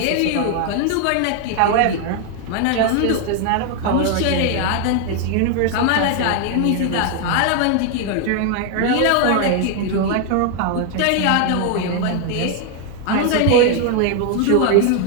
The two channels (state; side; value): different; both; correlation 0.01